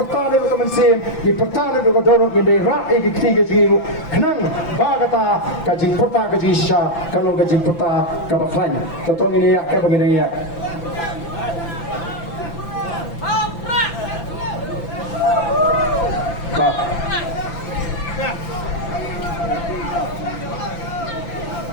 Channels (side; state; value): right; late; 5.9 ms